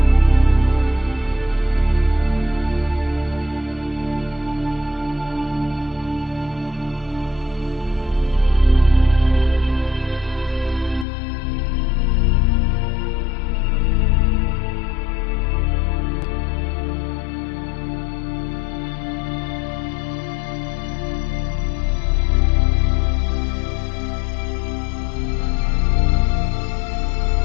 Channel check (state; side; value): drops out; right; at 11.1 s